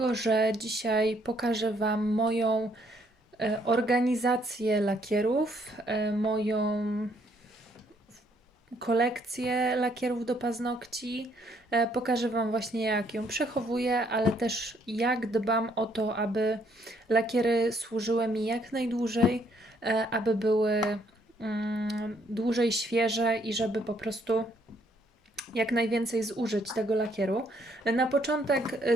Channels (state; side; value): normal; both; correlation 0.68